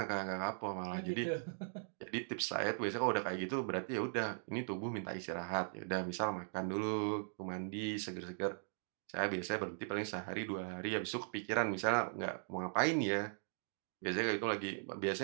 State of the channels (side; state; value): left; silent; digital silence